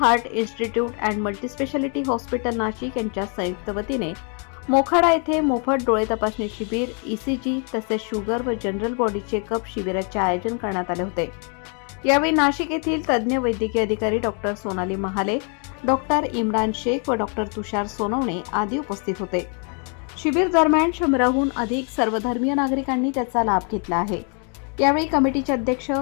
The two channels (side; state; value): right; quieter; 39.3 dB